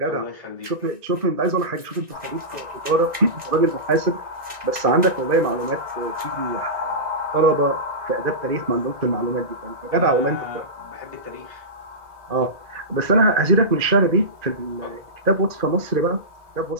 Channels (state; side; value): late; left; 1.9 ms